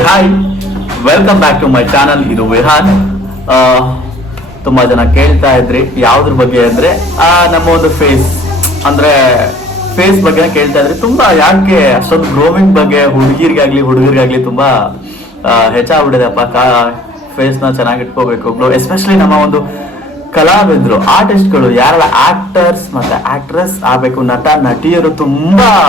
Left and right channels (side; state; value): both; normal; correlation 0.55